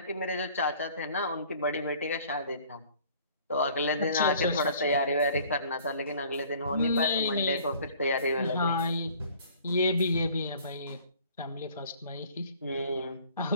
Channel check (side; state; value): both; inverted; correlation -0.53